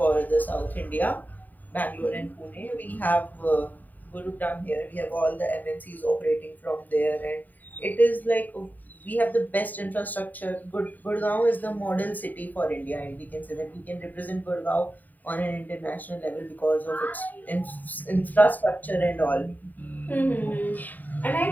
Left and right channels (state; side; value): late; right; 0.085 ms